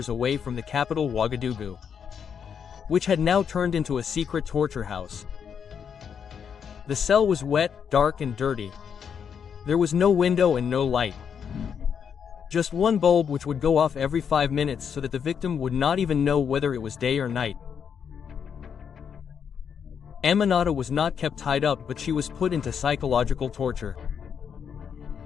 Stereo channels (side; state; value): right; quieter; 7.4 dB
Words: away from the capital Ouagadougou, which had now turned into a secret torture house. The cell was wet, dark and dirty. There was no window and no light. Just one bulb which would go off every 5 minutes so that the victim would not even know whether it was day or night. Aminata was not kept tied up, but she was put into psychological torture.